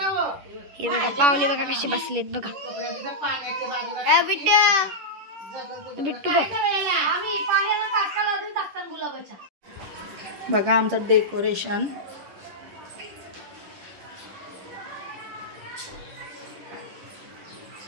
हे बघा पाहुणे बघा कशी बसलेत बघा. बिट्टू बघा आमचं डेकोरेशन.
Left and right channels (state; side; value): late; left; 11 ms